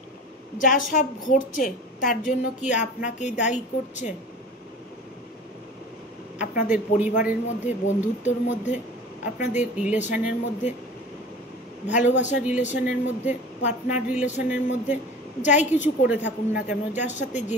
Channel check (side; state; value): both; normal; correlation 0.39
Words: যা সব ঘটছে তার জন্য কি আপনাকেই দায়ী করছে? আপনাদের পরিবারের মধ্যে, বন্ধুত্বর মধ্যে, আপনাদের রিলেশনের মধ্যে, ভালোবাসার রিলেশনের মধ্যে, পার্টনার রিলেশনের মধ্যে, যাই কিছু করে থাকুন না কেন, যার সাথে যে